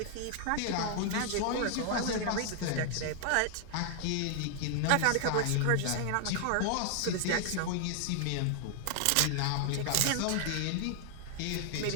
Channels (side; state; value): both; different; correlation 0.00